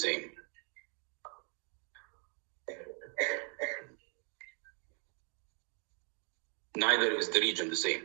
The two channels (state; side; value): quieter; left; 38.4 dB